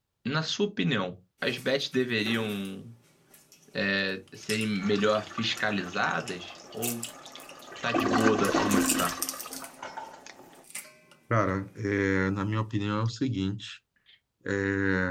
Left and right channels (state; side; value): identical; both; correlation 1.00